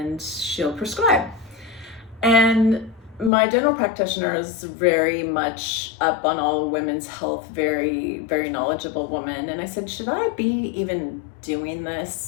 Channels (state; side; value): drops out; right; at 3.3 s